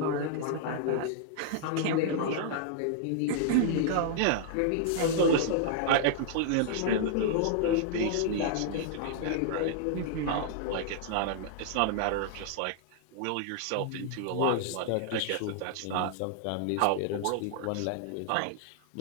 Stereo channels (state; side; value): different; both; correlation -0.01